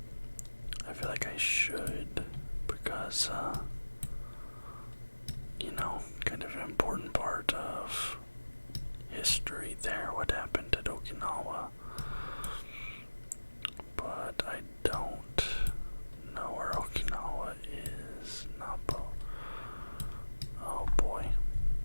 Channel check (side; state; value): both; inverted; correlation -1.00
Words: I feel like I should, because kind of an important part of history there, what happened at Okinawa. But I don't know where Okinawa is. Napo. Oh boy.